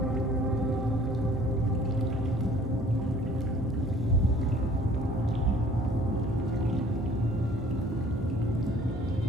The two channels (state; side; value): normal; both; correlation 0.53